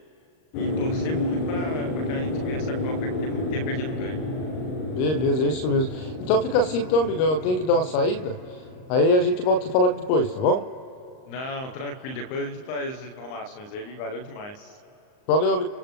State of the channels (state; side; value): late; right; 38 ms